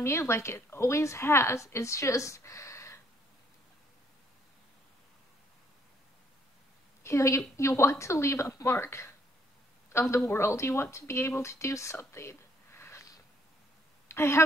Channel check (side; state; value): both; normal; correlation 0.67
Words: me like it always has. It's just, you want to leave a mark on the world. You want to be able to do something. I